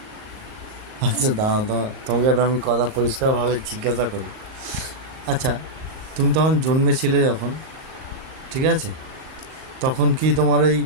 আচ্ছা দাঁড়াও তো, তোমাকে একটা আমি কথা পরিষ্কারভাবে জিজ্ঞাসা করি। আচ্ছা, তুমি তখন জন্মেছিলে যখন, ঠিক আছে, তখন কি তোমার এই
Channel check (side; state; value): left; late; 39 ms